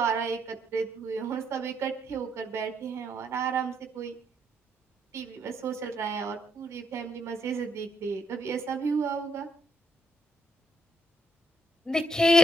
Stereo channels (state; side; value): normal; both; correlation 0.73